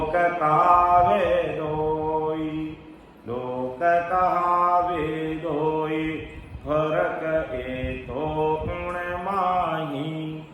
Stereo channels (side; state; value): both; identical; correlation 1.00